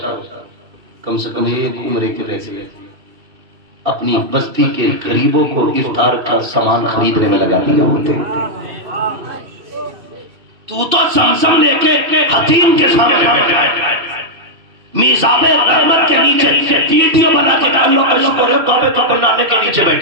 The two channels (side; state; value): left; late; 2.6 ms